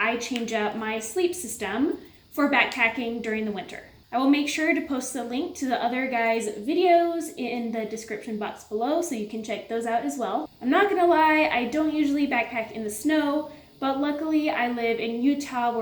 change up my sleep system for backpacking during the winter. I will make sure to post the link to the other guys' videos in the description box below so you can check those out as well. I'm not gonna lie, I don't usually backpack in the snow, but luckily I live in Utah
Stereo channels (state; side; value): identical; both; correlation 1.00